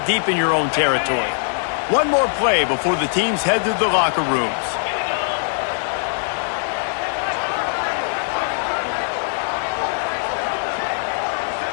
deep in your own territory. One more play before the teams head to the locker rooms.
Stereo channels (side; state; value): right; silent; 63 dB below the other